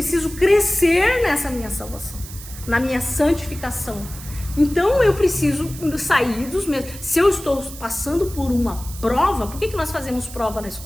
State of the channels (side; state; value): right; noise; hiss, 14 dB below the sound